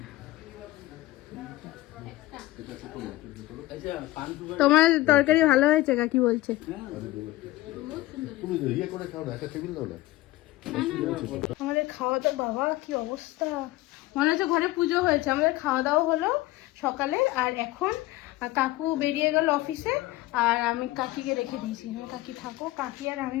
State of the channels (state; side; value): quieter; right; 17.4 dB